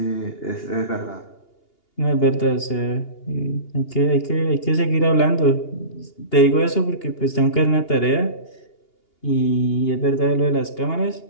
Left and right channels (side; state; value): right; late; 2.8 ms